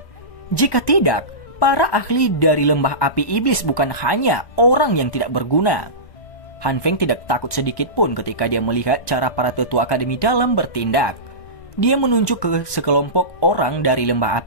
Jika tidak, para ahli dari lembah api iblis bukan hanya orang yang tidak berguna. Han Feng tidak takut sedikit pun ketika dia melihat cara para tetua akademi dalam bertindak. Dia menunjuk ke sekelompok orang dari lembah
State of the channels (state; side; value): late; right; 1.2 ms